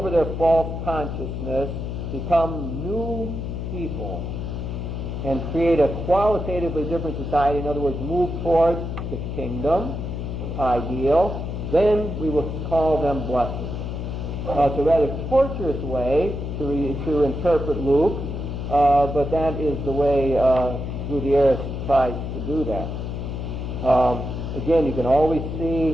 their false consciousness, become new people, and create a qualitatively different society. In other words, move towards the kingdom ideal, then we will call them blessed. It's a rather torturous way to interpret Luke, but that is the way Gutierrez tries to do that. Again, you can always see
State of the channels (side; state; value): left; noise; hum, 5 dB below the sound